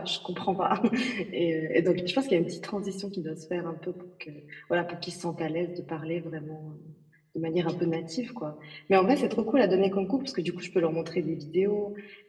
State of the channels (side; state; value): both; identical; correlation 1.00